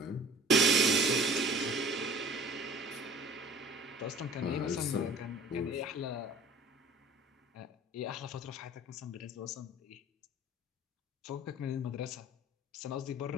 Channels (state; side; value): normal; both; correlation 0.46